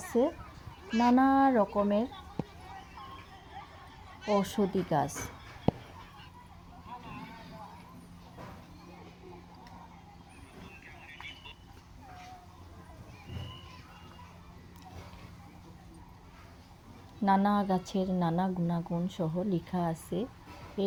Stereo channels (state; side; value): identical; both; correlation 1.00